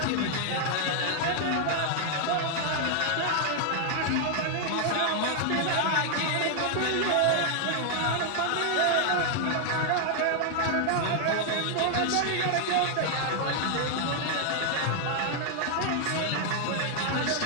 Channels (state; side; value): different; both; correlation 0.00